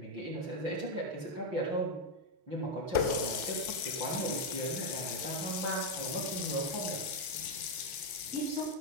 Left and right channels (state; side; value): late; left; 5.7 ms